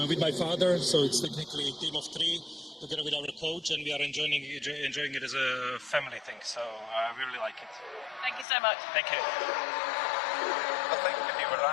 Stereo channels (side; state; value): right; drops out; at 8.5 s